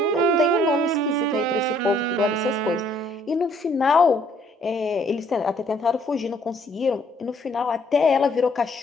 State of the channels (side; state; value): both; normal; correlation 0.63